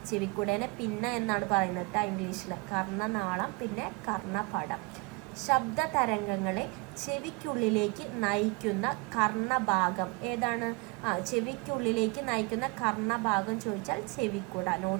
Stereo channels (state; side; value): quieter; left; 28.0 dB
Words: ചെവിക്കുടേനെ പിന്ന എന്നാണ് പറയുന്നത് ഇംഗ്ലീഷിൽ. കർണനാളം, പിന്നെ കർണപടം. ശബ്ദ തരംഗങ്ങളെ ചെവിക്കുള്ളിലേക്ക് നയിക്കുന്ന കർണഭാഗം ഏതാണ്, ചെവിക്കുള്ളിലേക്ക് നയിക്കുന്ന കർണഭാഗം ചോദിച്ചാൽ ചെവിക്കുട.